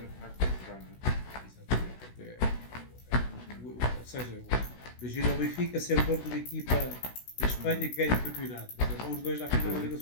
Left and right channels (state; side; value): late; right; 16 ms